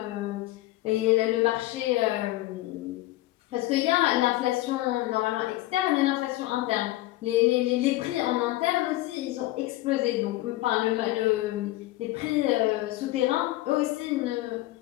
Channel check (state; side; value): quieter; right; 17.3 dB